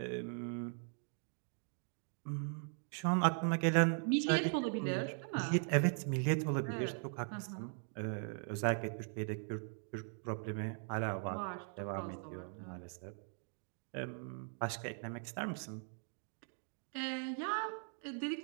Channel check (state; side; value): silent; left; 51 dB below the other